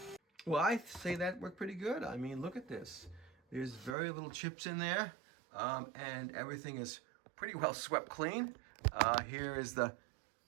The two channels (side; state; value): left; drops out; at 4.0 s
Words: Well, I say that worked pretty good. I mean, look at this. There's very little chips in there, and everything is pretty well swept clean. Here is the